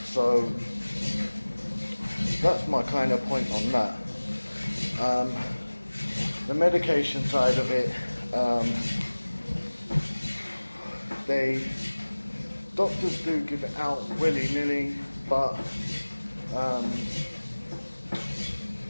So that's my kind of point on that. The medication side of it, doctors do give it out willy-nilly, but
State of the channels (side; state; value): both; inverted; correlation -1.00